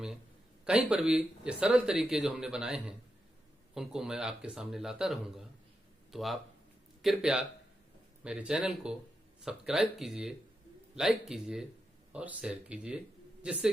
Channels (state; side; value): normal; both; correlation 0.87